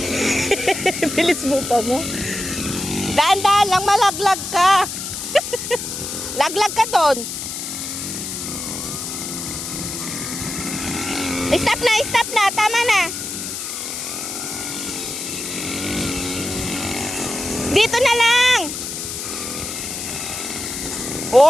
Bilis mo pa mo. Dahan-dahan lang, malaglag ka. Laglag ka doon. Stop na, tama na. Dito na lang.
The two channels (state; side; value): noise; left; hiss, 6 dB below the sound